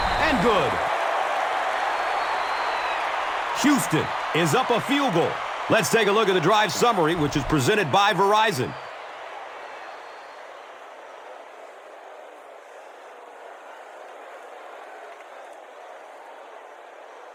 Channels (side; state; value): both; identical; correlation 1.00